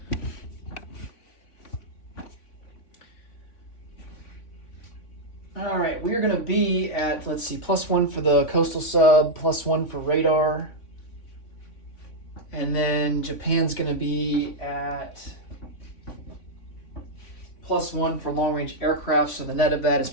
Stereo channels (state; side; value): late; right; 3.5 ms